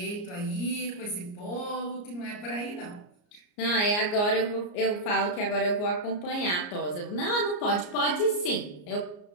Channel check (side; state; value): right; late; 34 ms